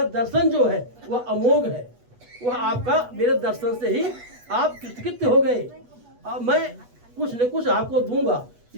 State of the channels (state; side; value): late; left; 8.2 ms